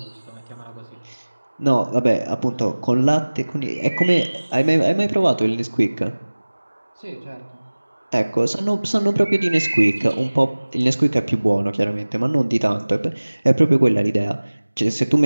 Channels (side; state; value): both; inverted; correlation -1.00